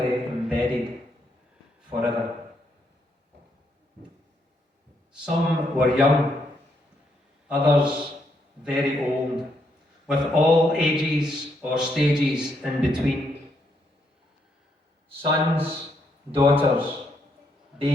embedded forever. Some were young, others very old, with all ages or stages in between. Sons, daughters,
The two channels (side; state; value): both; normal; correlation 0.76